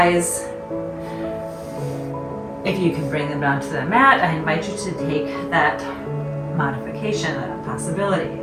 If you can bring them down to the mat, I invite you to take that modification, that possibility.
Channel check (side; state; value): both; identical; correlation 1.00